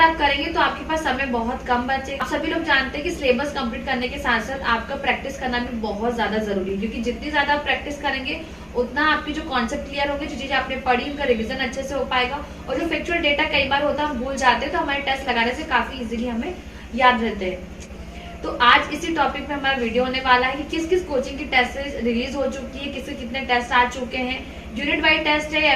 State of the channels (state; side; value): identical; both; correlation 1.00